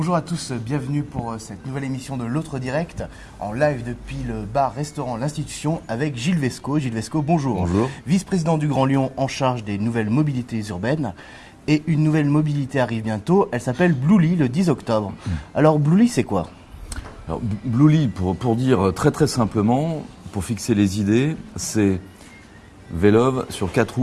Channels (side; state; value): both; identical; correlation 1.00